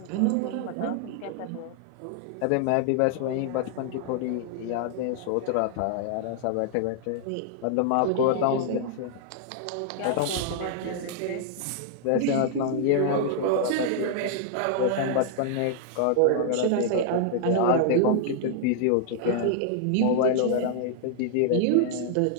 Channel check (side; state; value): both; different; correlation 0.00